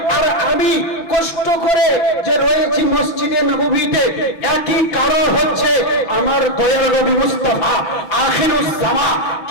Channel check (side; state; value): right; late; 6.2 ms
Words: আর আমি কষ্ট করে যে রয়েছি মসজিদে নববীতে, একই কারণ হচ্ছে আমার দয়াল নবী মুস্তাফা আখিরুস জামা